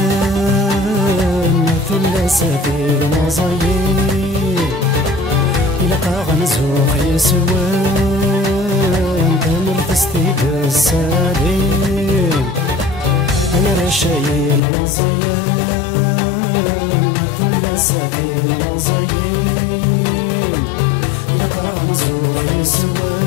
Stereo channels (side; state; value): right; drops out; at 14.6 s